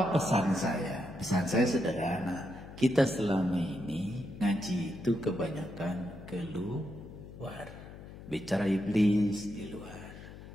pesan saya? Pesan saya sederhana. Kita selama ini ngaji itu kebanyakan keluar. Bicara iblis di luar.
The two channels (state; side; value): noise; left; hum, 15 dB below the sound